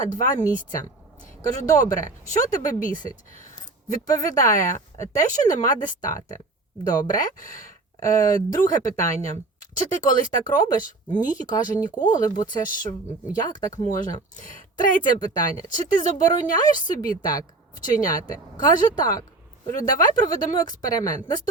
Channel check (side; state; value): left; quieter; 3.2 dB